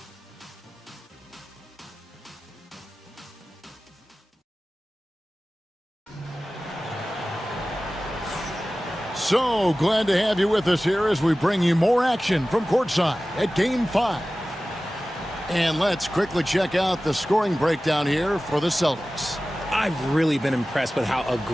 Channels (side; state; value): both; normal; correlation 0.96